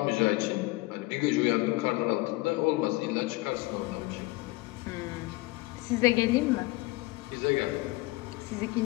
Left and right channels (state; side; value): quieter; right; 21.8 dB